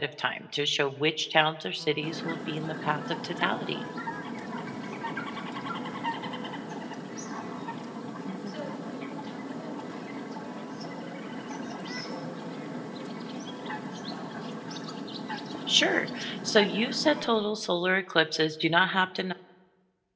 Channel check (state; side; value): identical; both; correlation 1.00